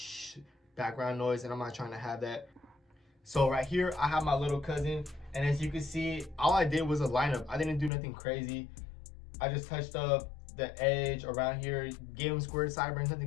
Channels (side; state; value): right; drops out; at 7.9 s